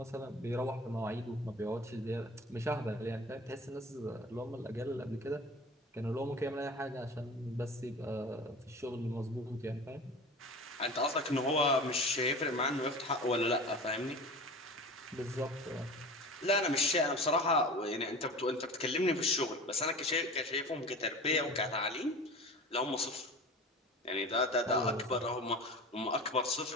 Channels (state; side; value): normal; both; correlation 0.35